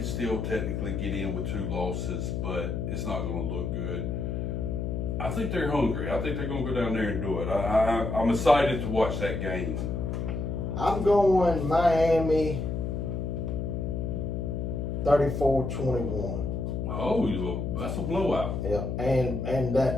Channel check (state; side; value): noise; left; hum, 2 dB below the sound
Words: still technically get in with 2 losses, but it's not going to look good. I think they're hungry. I think they're going to go down there and do it. I'm excited to watch that game. I'm going Miami 34-21. Oh, that's a blowout. Yeah, and